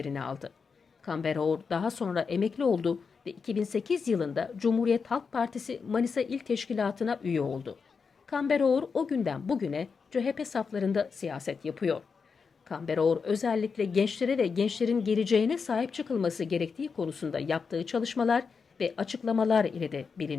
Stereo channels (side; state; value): right; quieter; 5.4 dB